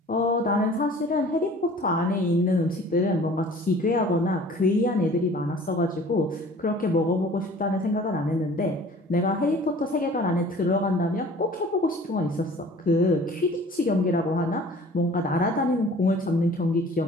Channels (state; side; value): normal; both; correlation 0.48